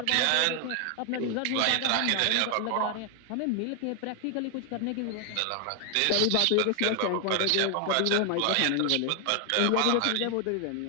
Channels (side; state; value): both; different; correlation 0.00